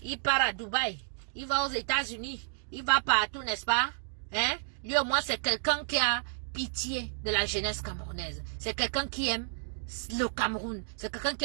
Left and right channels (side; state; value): left; silent; digital silence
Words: Il part à Dubaï. Il va aux États-Unis. Il va partout, n'est-ce pas? Hein? Lui, au moins, c'est quelqu'un qui a pitié de la jeunesse camerounaise. C'est quelqu'un qui aime le Cameroun. C'est quelqu'un qui